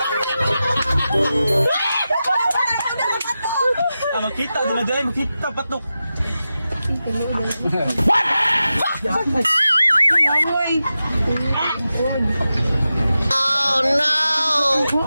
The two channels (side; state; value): both; inverted; correlation -0.92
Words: Kita dumajay mo kita patok. Oh no!